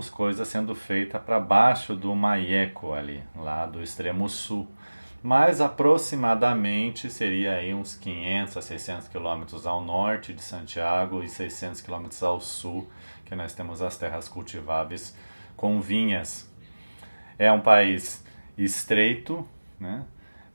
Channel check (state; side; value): inverted; both; correlation -1.00